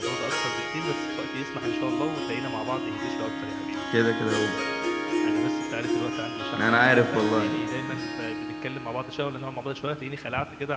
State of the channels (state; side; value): identical; both; correlation 1.00